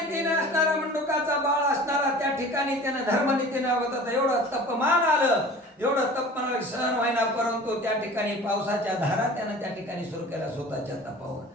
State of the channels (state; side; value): normal; both; correlation 0.42